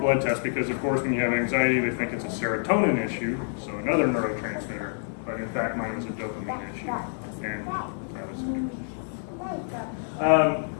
test because, of course, when you have anxiety, they think it's a serotonin issue, so another neurotransmitter. But in fact, mine was a dopamine issue. And that was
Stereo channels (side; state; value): right; silent; digital silence